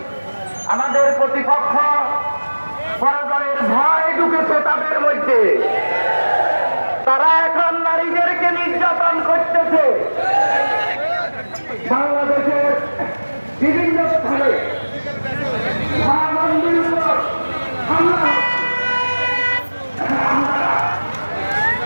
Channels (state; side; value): inverted; both; correlation -1.00